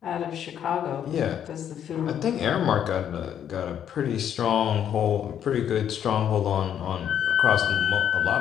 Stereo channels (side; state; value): right; quieter; 9.4 dB